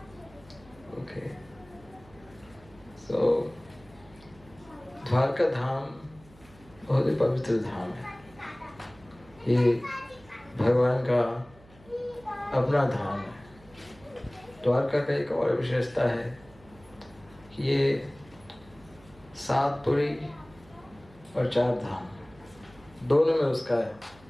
ओके। सो द्वारका धाम बहुत ही पवित्र धाम है। ये भगवान का अपना धाम है। द्वारका का एक और विशेषता है कि ये 7 पुरी और 4 धाम दोनों में उसका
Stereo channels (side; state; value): right; noise; hum, 25 dB below the sound